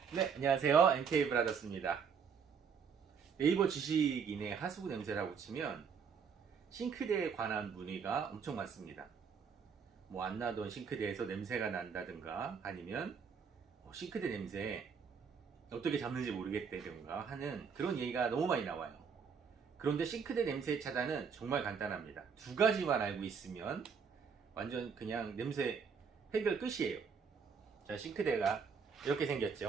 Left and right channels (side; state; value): left; quieter; 6.2 dB